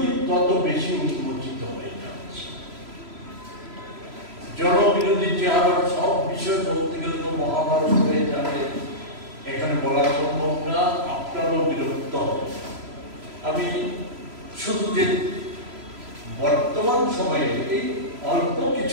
তত বেশি উন্মোচিত হয়ে যাচ্ছে। জনবিরোধী চেহারার সব বিষয় বলতে গেলে তো মহাভারত হয়ে যাবে, এখানে বলা সম্ভব না, আপনারও বিরক্ত হবে। আমি শুধু যে বর্তমান সময়ে এই অল্প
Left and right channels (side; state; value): left; late; 3.0 ms